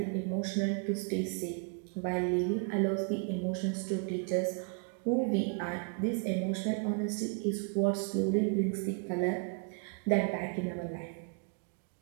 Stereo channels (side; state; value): left; quieter; 38.9 dB